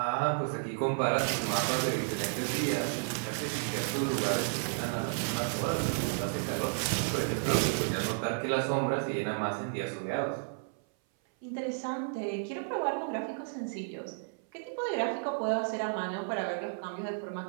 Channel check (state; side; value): silent; left; 56 dB below the other